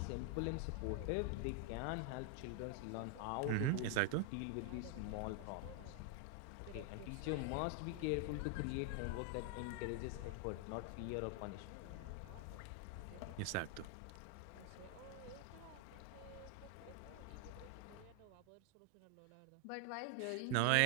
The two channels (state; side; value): different; both; correlation 0.00